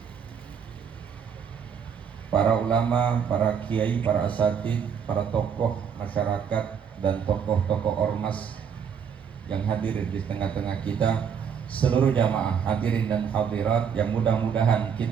para ulama, para kiai, para asatidz, para tokoh masyarakat dan tokoh-tokoh ormas yang hadir di tengah-tengah kita, seluruh jamaah hadirin dan hadirat yang mudah-mudahan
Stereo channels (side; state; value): left; quieter; 7.3 dB